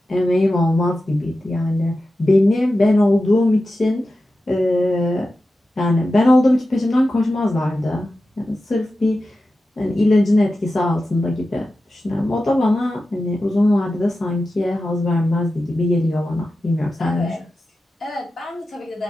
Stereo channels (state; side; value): normal; both; correlation 0.93